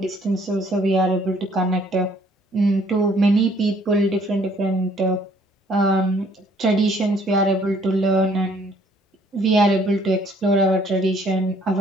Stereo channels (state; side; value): normal; both; correlation 0.62